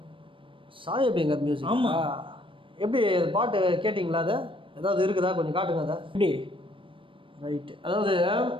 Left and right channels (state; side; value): late; left; 0.25 ms